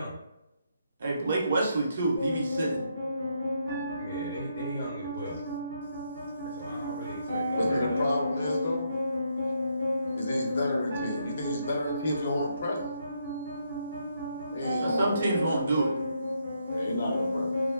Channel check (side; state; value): both; inverted; correlation -0.77